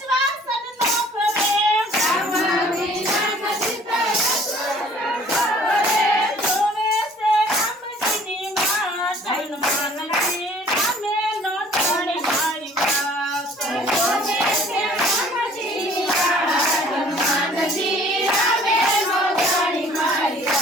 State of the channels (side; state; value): both; normal; correlation 0.53